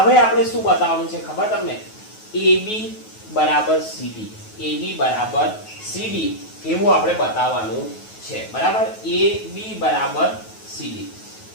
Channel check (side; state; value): right; late; 9.3 ms